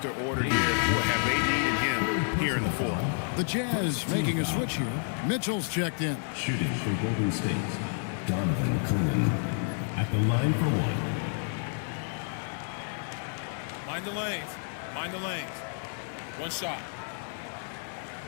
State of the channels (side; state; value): right; silent; 58 dB below the other